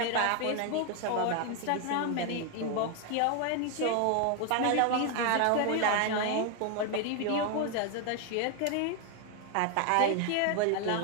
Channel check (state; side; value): different; both; correlation 0.01